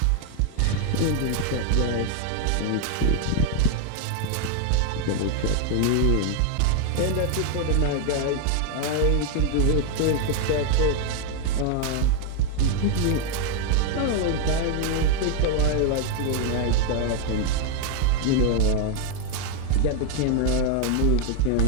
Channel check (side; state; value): both; different; correlation 0.01